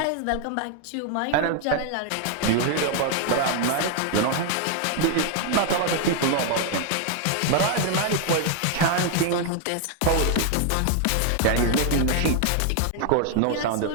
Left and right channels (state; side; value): different; both; correlation 0.00